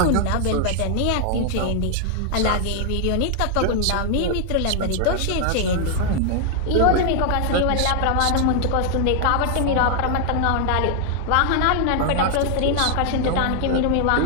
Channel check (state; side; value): different; both; correlation 0.00